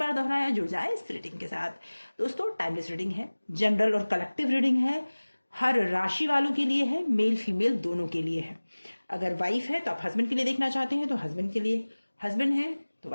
दोहराया, जुड़ जाए इस रीडिंग के साथ। दोस्तों, टाइमलेस रीडिंग है, जनरल और कलेक्टिव रीडिंग है, हर राशि वालों के लिए है, मेल फीमेल दोनों के लिए है। अगर वाइफ है तो आप हस्बैंड के लिए देखना चाहते हैं तो हस्बैंड के लिए, हस्बैंड है तो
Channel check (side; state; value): both; inverted; correlation -1.00